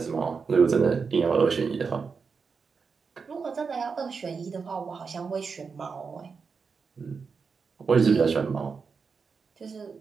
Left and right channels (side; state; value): left; quieter; 5.3 dB